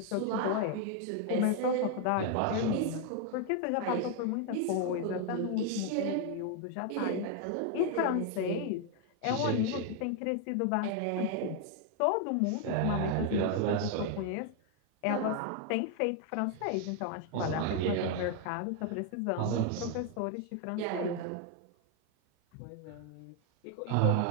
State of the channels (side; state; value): both; different; correlation 0.01